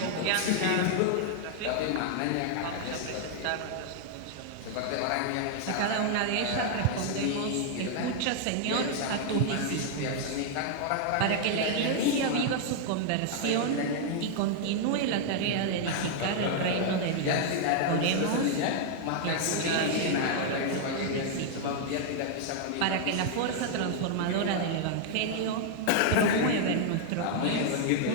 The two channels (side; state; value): both; different; correlation 0.00